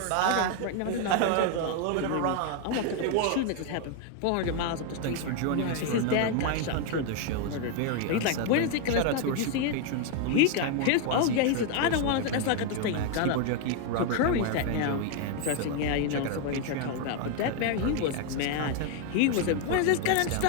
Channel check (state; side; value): different; both; correlation 0.01